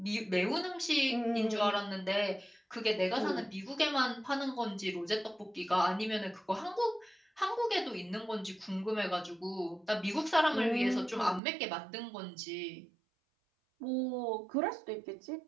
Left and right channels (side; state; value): left; drops out; at 11.4 s